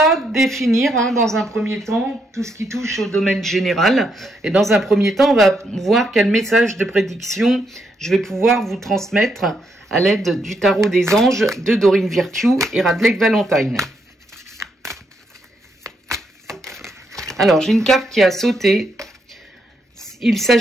définir dans un premier temps tout ce qui touche au domaine général. Et dans un premier temps, on va voir quel message de prédiction je vais pouvoir vous transmettre à l'aide du tarot des anges de Doreen Virtue et Radleigh Valentine. Alors, j'ai une carte qui a sauté. Il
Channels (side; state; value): both; normal; correlation 0.78